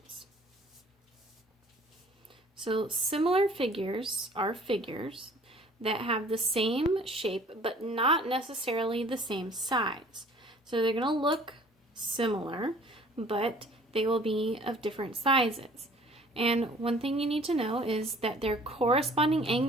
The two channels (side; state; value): both; normal; correlation 0.53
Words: So similar figures are figures that have the same shape but not necessarily the same size. So they're going to look similar, but they will be of different sizes. And one thing you need to know is that their corresponding